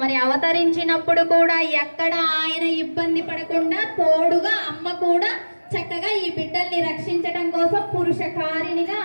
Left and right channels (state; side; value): inverted; both; correlation -1.00